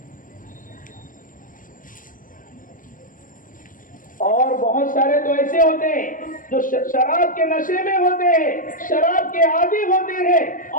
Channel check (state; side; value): late; right; 0.39 ms